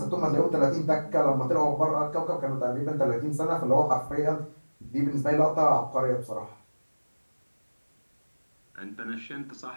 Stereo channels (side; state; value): both; inverted; correlation -1.00